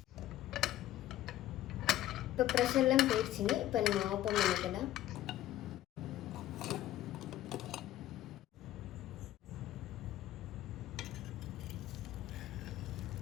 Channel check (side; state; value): right; quieter; 13.9 dB